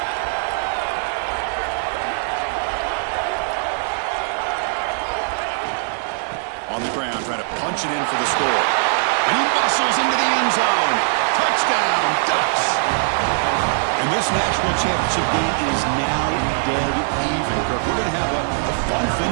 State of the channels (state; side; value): silent; left; 59 dB below the other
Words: On the ground, trying to punch it in for the score. And he bustles into the end zone. Touchdown, Ducks. And this national championship game is now dead even, Kirk. We're going to have a fun